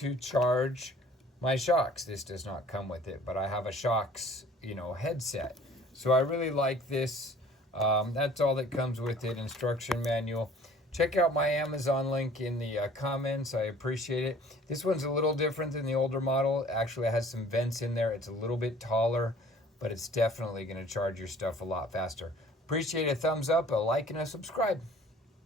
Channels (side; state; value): both; normal; correlation 0.51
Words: charge my Shocks. This does not come with it, but I have a Shocks, headset. So I really like this. That's all that comes with it. Instruction manual. Check out my Amazon link in the comments. I appreciate it. This one's a little different than the older model. Actually, it has some vents in there. It's a little bit taller, but it's definitely going to charge your stuff a lot faster. Appreciate a thumbs up, a like, and a subscribe.